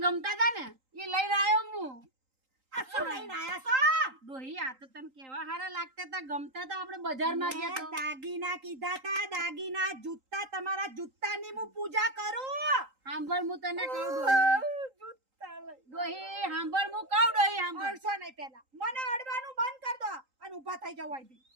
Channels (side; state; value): left; late; 3.8 ms